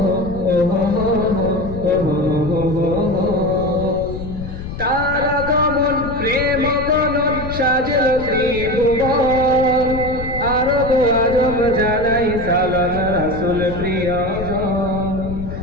তার আগমন প্রেম গণন সাজল ত্রিভুবন, আরব আজম জানাই সালাম রাসূল প্রিয়জন।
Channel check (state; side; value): noise; left; rumble, 8 dB below the sound